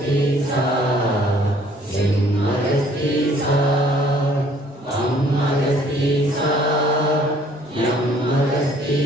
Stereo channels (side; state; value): both; normal; correlation 0.59